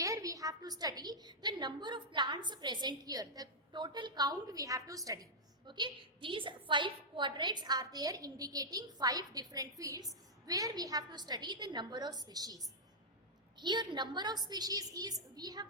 we have to study the number of plants present here. The total count we have to study. Okay, these 5 quadrants are there indicating 5 different fields where we have to study the number of species. Here number of species is, we have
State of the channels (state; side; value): normal; both; correlation -0.08